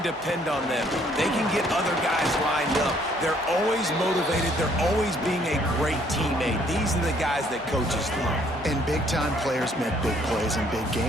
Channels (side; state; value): both; normal; correlation 0.64